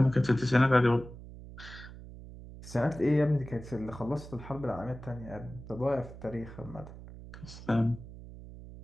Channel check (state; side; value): noise; right; hum, 15 dB below the sound